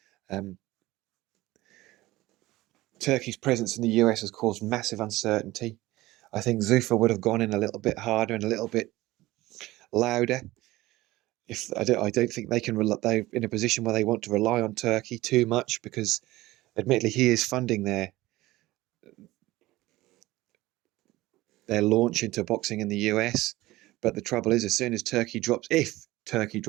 Turkey's presence in the US has caused massive uncertainty. I think Zuffa would have gone in a little bit harder and a little bit louder. I don't think they're in a position where they want to rely on Turkey too much, because admittedly he is funding their launch into boxing in the US. But the trouble is, as soon as if Turkey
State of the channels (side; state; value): left; quieter; 18.1 dB